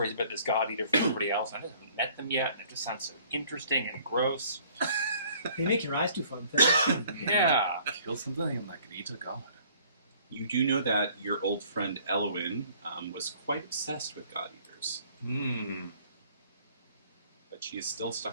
about this god eater from everybody else. I haven't met them yet, and it just sounds so interesting and gross. They make your eyes do fun things. Yeah. Kill something and like eat a god. You do know that your old friend Elwyn was quite obsessed with god eaters, but she is still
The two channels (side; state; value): both; inverted; correlation -0.56